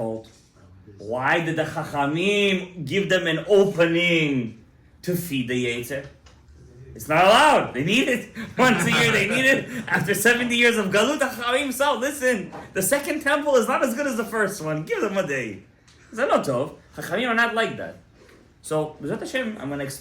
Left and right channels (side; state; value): both; identical; correlation 1.00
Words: Why did the Chachamim give them an opening to feed the Yetzer? It's not allowed. They need it. Once a year they need it. After 70 years of Galut, the Chachamim said, listen, the second temple is not as good as the first one. Give them a day. Tov. Chachamim are not like that. So, B'ezrat Hashem, I'm going to